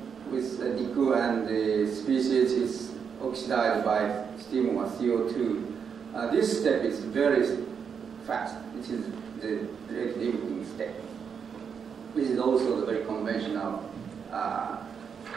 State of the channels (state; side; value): quieter; left; 6.7 dB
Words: with nickel, and the species is oxidized by steam or CO2. This step is very fast. It is the rate limiting step. This is also the very conventional